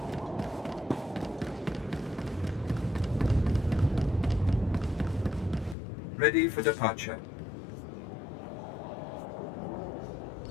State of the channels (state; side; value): drops out; right; at 5.8 s